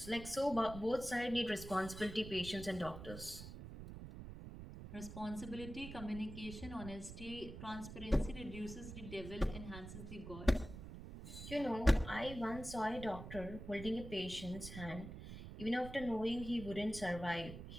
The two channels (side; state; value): right; noise; rumble, 10 dB below the sound